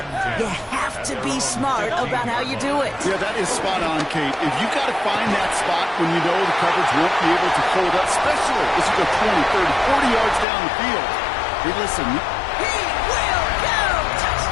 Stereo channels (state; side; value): drops out; right; at 10.5 s